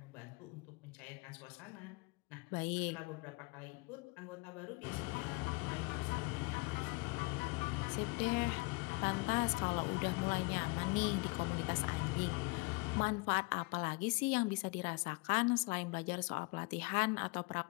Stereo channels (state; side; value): quieter; right; 28.2 dB